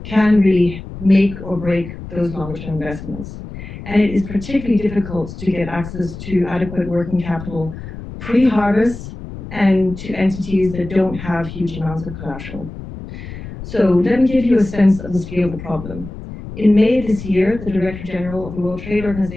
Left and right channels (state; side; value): noise; left; rumble, 12 dB below the sound